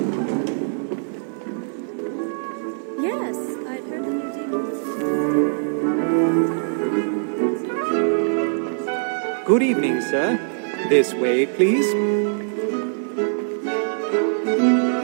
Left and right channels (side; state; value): left; silent; 64 dB below the other